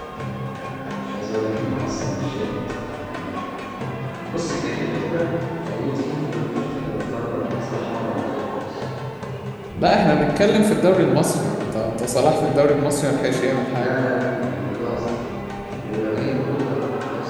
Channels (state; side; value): identical; both; correlation 1.00